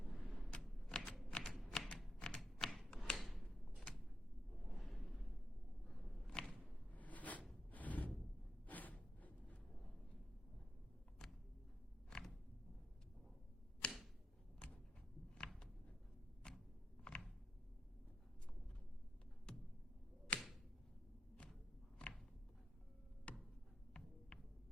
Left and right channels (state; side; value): normal; both; correlation 0.86